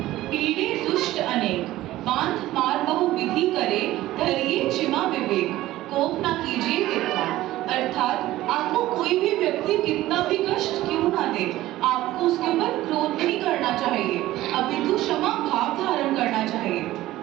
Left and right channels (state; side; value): quieter; left; 15.8 dB